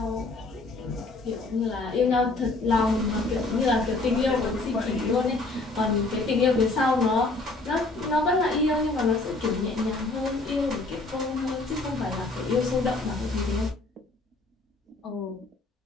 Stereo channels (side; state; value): right; quieter; 3.3 dB